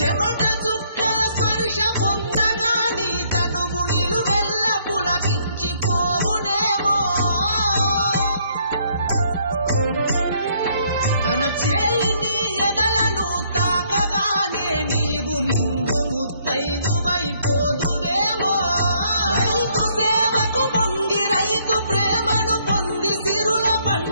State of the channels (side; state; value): both; inverted; correlation -0.67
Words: చుక్కల స్పర్శ పొందగాని తనువు నిలువెల్ల పులకించిపోవునేమో తన చేయిని ఎదలను తాకగానే నీవు నిండు ముత్తైదువైపోదువేమో రైతు సేవకు పొంగి రైతు ప్రేమను పొంది సిరుల